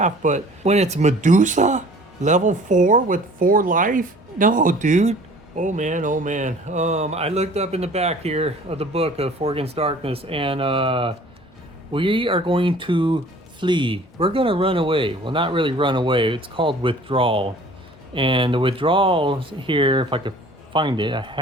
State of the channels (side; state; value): both; normal; correlation 0.49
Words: but when it's Medusa? Level 4 with 4 life? No, dude. Oh man, oh man. I looked up in the back here of the book of Four Against Darkness, and we are going to flee. We're gonna run away. Well, not really run away. It's called withdrawal. And the withdrawal here, if I could find it, I